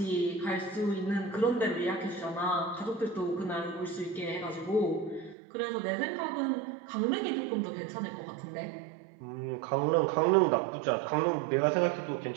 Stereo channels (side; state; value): left; drops out; at 5.4 s